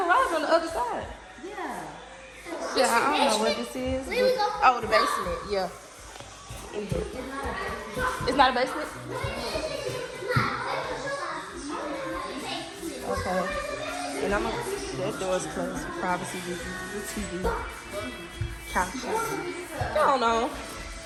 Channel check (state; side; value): identical; both; correlation 1.00